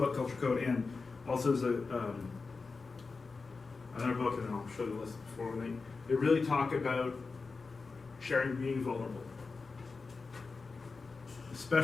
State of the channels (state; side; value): quieter; right; 4.3 dB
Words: Culture Code, and also is another book, and I'll show you the list before. They really talk about sharing, being vulnerable.